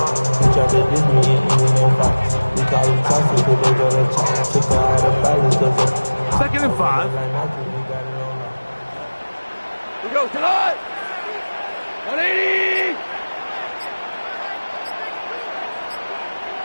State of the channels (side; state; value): both; inverted; correlation -1.00